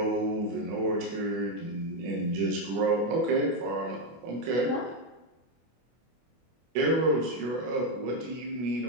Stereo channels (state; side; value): late; left; 24 ms